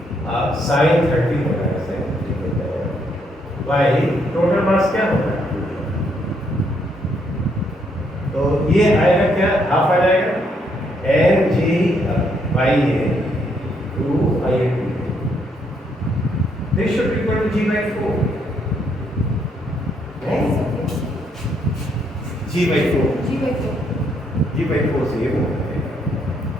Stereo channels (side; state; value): both; normal; correlation 0.73